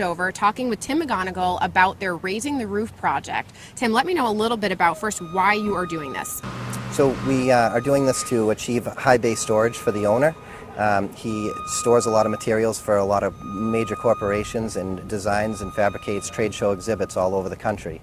talking with Tim McGonigal about their Raising the Roof project. Tim, let me know a little bit about first why you are doing this. So we are doing this to achieve high bay storage for the owner. He stores a lot of materials for a lot of major corporations and designs and fabricates trade show exhibits all over the country.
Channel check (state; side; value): identical; both; correlation 1.00